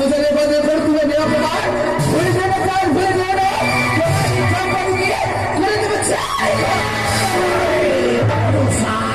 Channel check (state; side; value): noise; left; rumble, 18 dB below the sound